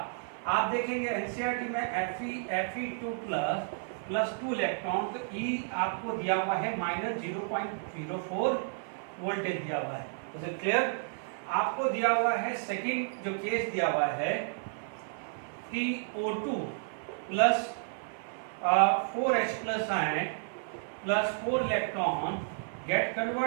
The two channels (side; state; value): left; silent; 57 dB below the other